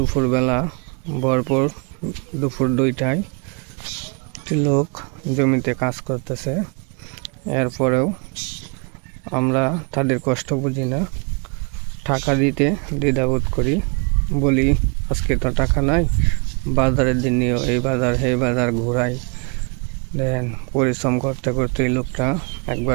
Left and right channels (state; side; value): quieter; left; 34.8 dB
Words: ভরপুর দুপুর 2টায় লোক জমিতে কাজ করতেছে, এরপরেও আমরা তাদের কষ্ট বুঝি না, টাকা দিতে দ্বিধাবোধ করি, বলি আজকে তো টাকা নাই, বাজারের দিন নিয়েও এই বাজার সেই বাজার ঘোরাই। দেখেন পরিশ্রম করতে করতে এই লোকটা